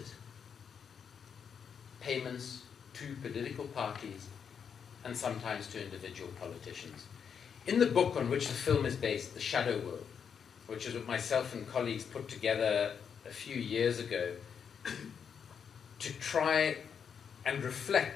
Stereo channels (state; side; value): quieter; right; 7.1 dB